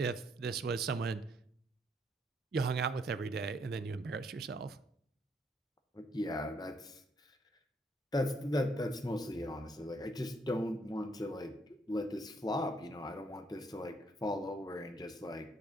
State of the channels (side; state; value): both; normal; correlation 0.70